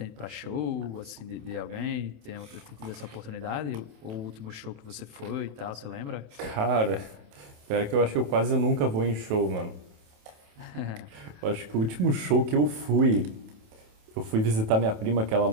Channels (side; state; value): left; late; 27 ms